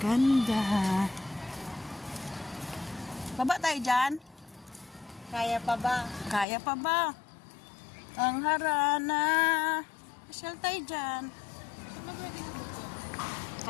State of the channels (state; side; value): drops out; right; at 6.5 s